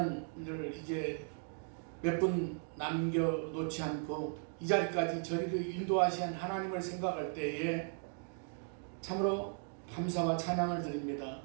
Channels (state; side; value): silent; left; 53 dB below the other